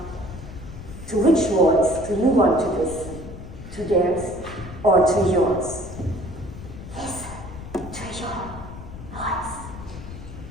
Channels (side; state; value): left; noise; rumble, 12 dB below the sound